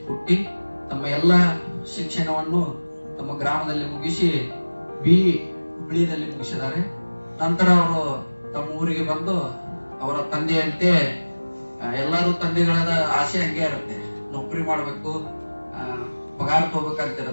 ಹುಟ್ಟಿ ತಮ್ಮ ಎಲ್ಲ ಶಿಕ್ಷಣವನ್ನು ತಮ್ಮ ಗ್ರಾಮದಲ್ಲಿ ಮುಗಿಸಿ ಹುಬ್ಳಿಯಲ್ಲಿ ಮುಗಿಸಿದ್ದಾರೆ. ನಂತರ ಅವರು ತಮ್ಮ ಊರಿಗೆ ಬಂದು ಅವರ ತಂದೆಯಂತೆ ಎಲ್ಲರೂ ತಂದೆಗಳಾದ ಆಸೆ ಹಂಗೆ ಇರುತ್ತೆ, ನೌಕರಿ ಮಾಡಬೇಕು, ಪಗಾರ ತಗೋಬೇಕಂತ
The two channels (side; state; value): both; inverted; correlation -1.00